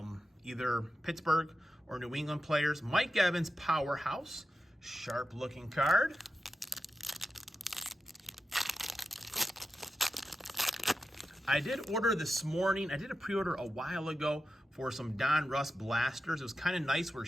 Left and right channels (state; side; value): normal; both; correlation 0.90